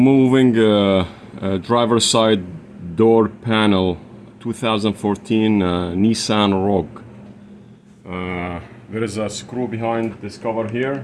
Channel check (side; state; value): both; identical; correlation 1.00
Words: driver's side door panel, 2014 Nissan Rogue. There is a screw behind this cover here,